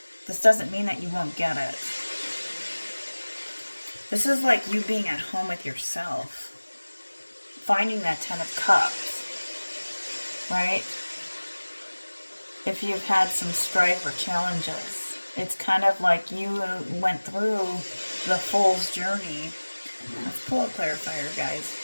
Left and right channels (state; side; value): inverted; both; correlation -1.00